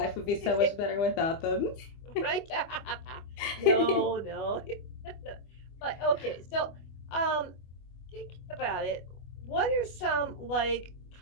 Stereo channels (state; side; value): late; right; 25 ms